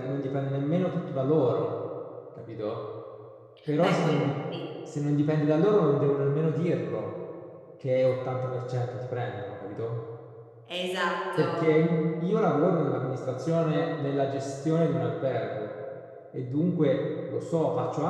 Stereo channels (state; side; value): identical; both; correlation 1.00